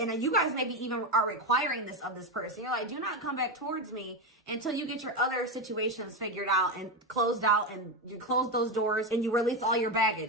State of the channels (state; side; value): normal; both; correlation 0.13